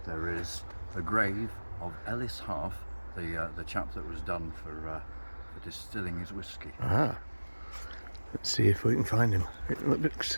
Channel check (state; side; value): inverted; both; correlation -1.00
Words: There is the grave of Ellis Heath, the chap that was done for distilling his whiskey. Ah. Let's see if we can find him. It looks